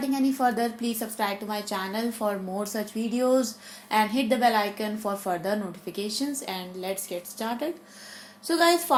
any further, please subscribe to my channel for more such videos and hit the bell icon for further notifications, and let's get started. So guys,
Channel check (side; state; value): both; identical; correlation 1.00